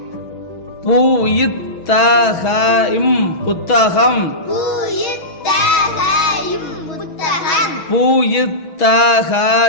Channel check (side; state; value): right; late; 6.2 ms